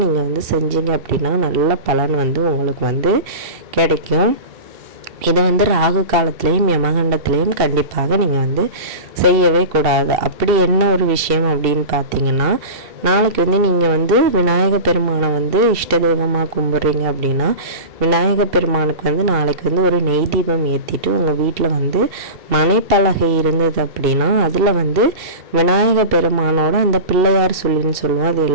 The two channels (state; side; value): late; left; 2.7 ms